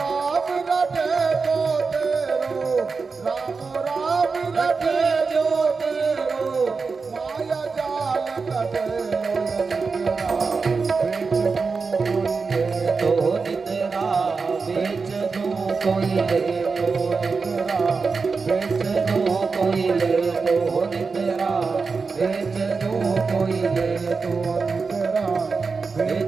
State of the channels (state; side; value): quieter; left; 4.7 dB